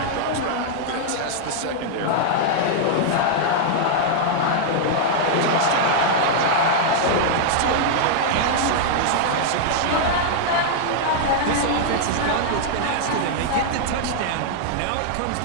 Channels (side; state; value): both; different; correlation -0.01